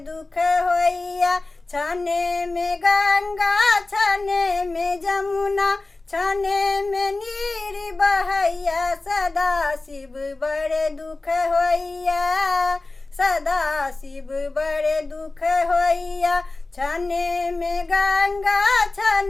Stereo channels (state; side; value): quieter; right; 3.2 dB